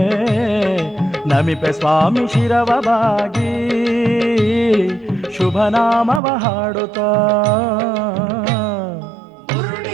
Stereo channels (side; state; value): left; drops out; at 6.2 s